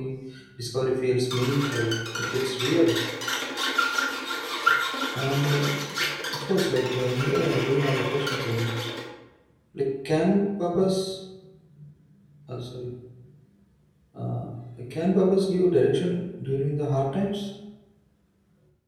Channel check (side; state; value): both; identical; correlation 1.00